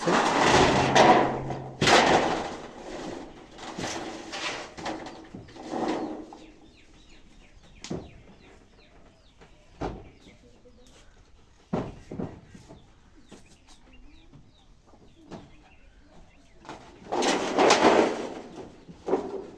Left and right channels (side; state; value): both; identical; correlation 1.00